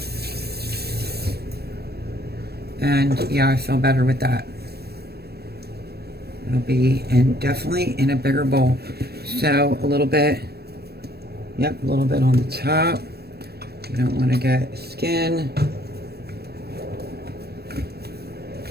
And yeah, I feel better with that. It'll be definitely in a bigger bowl. So a little bit, yep, a little bit on the top. You don't want to get skin.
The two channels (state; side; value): late; left; 0.47 ms